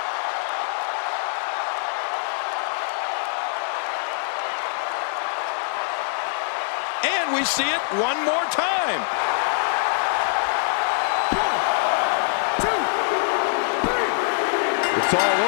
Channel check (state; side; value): silent; right; digital silence